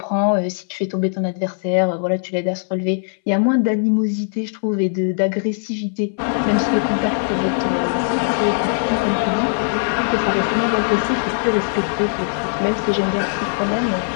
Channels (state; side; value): silent; right; 63 dB below the other